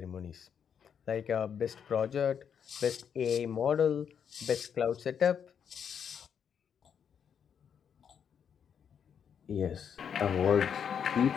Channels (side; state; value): right; quieter; 7.7 dB